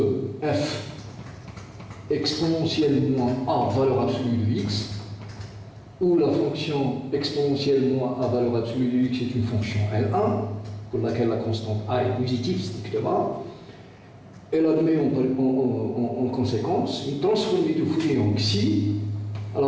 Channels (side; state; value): both; identical; correlation 1.00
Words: f exponentielle moins a valeur absolue de x, où la fonction exponentielle moins a valeur absolue de x est une fonction L1, pour laquelle la constante a est positive strictement. Elle admet en conséquence une transformée de Fourier en xi.